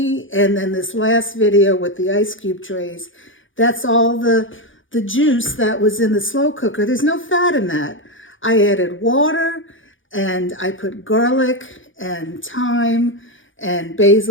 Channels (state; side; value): late; right; 0.57 ms